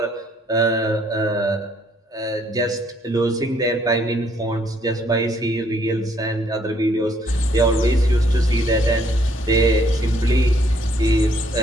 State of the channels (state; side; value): normal; both; correlation 0.66